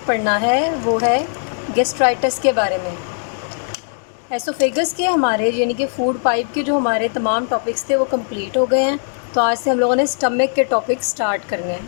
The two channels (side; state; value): right; silent; digital silence